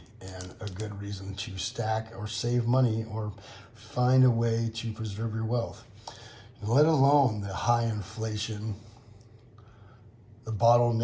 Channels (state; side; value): identical; both; correlation 1.00